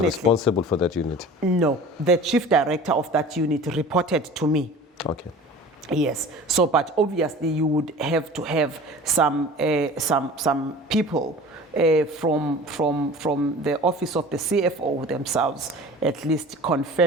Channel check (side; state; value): both; normal; correlation 0.41